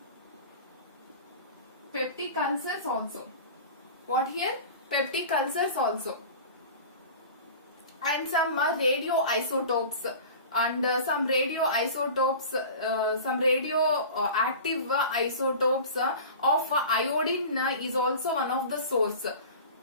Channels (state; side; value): inverted; both; correlation -0.36